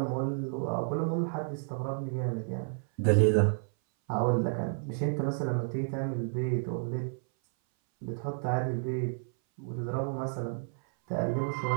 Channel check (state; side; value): silent; left; 57 dB below the other